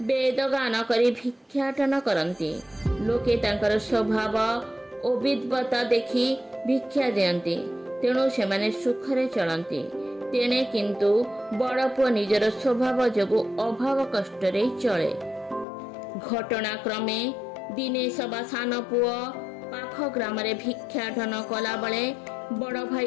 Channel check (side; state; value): right; drops out; at 15.7 s